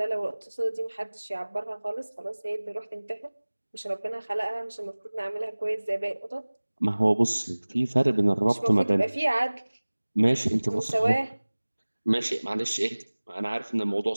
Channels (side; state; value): both; inverted; correlation -1.00